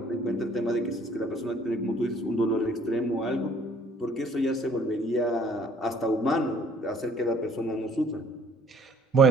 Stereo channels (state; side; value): normal; both; correlation 0.58